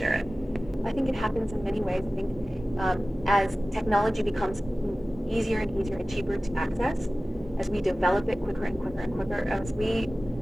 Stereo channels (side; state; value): both; normal; correlation 0.96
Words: it. I think it happens in many ways. I think as technology becomes easier and easier and cheaper to access, as we develop it quicker and quicker and quicker, as we